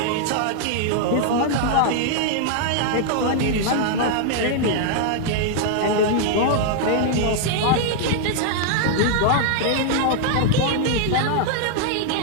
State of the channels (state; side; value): different; both; correlation 0.00